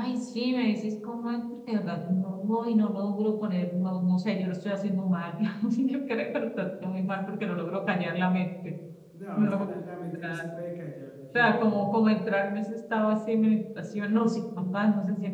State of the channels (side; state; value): both; identical; correlation 1.00